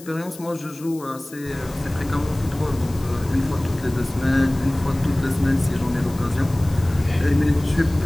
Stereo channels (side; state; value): left; noise; hiss, 20 dB below the sound